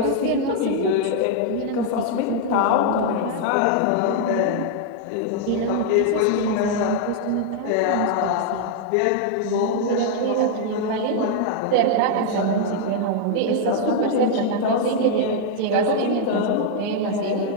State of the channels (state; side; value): different; both; correlation 0.00